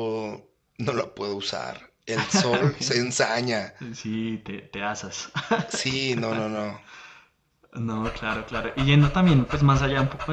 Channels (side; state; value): both; identical; correlation 1.00